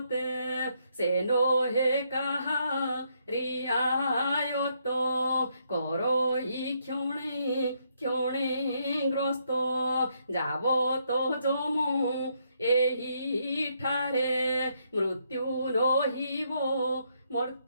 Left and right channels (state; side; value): inverted; both; correlation -0.74